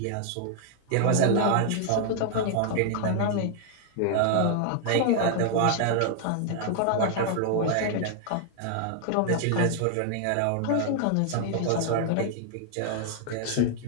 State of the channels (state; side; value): different; both; correlation 0.00